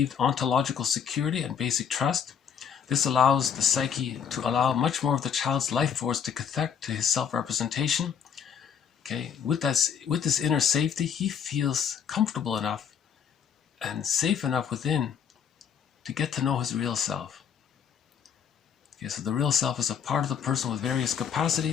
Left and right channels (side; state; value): right; quieter; 7.7 dB